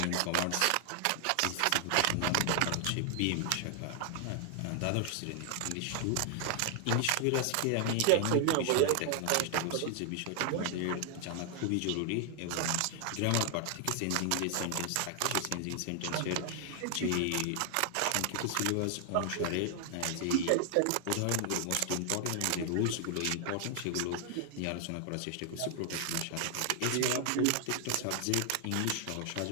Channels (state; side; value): different; both; correlation 0.00